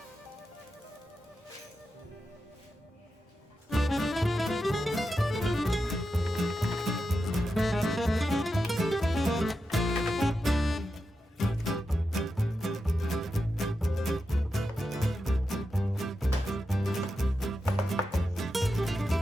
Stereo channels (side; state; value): both; normal; correlation 0.89